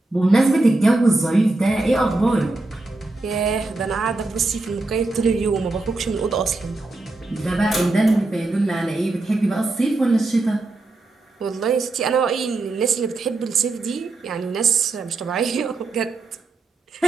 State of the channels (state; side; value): quieter; left; 3.1 dB